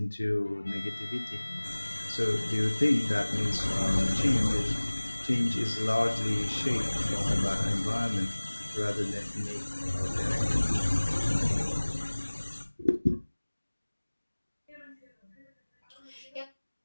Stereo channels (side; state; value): both; inverted; correlation -1.00